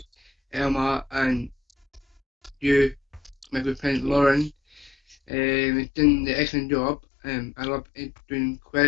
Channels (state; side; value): drops out; right; at 5.2 s